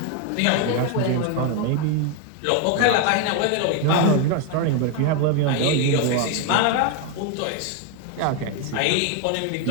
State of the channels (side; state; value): both; different; correlation 0.01